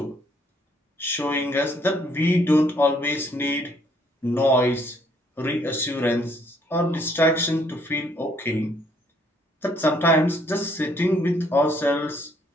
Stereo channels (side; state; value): both; normal; correlation 0.65